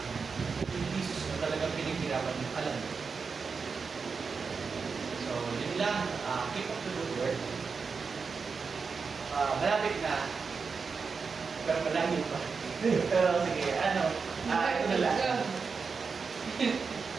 yung thesis mo talagang pinaghirapan nyo, alam mo. So, yun lang, keep up the good work. Malapit na, pero malayo pa. Pero sige, ito na lang.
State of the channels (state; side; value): quieter; left; 5.2 dB